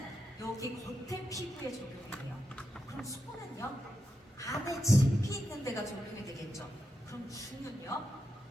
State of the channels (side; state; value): both; normal; correlation 0.87